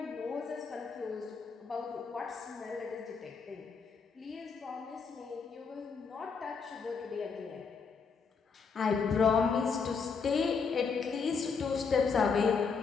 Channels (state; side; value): quieter; right; 5.4 dB